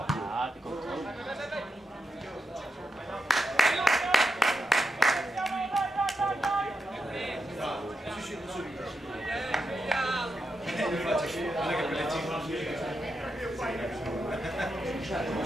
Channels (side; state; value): both; normal; correlation 0.86